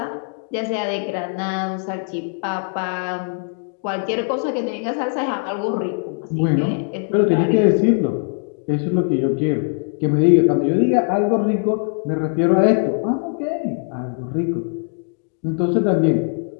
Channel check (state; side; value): silent; right; digital silence